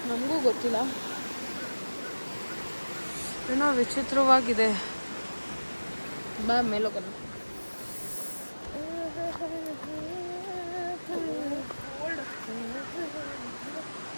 ನಮಗೂ ಗೊತ್ತಿಲ್ಲ, ಏನೋ ವಿಚಿತ್ರವಾಗಿದೆ. ಬಾ ಮೇಲೋಗೋಣ.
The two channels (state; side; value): inverted; both; correlation -1.00